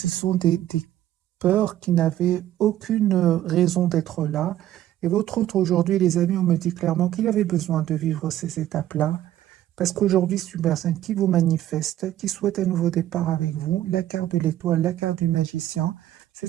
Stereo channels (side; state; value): left; quieter; 12.9 dB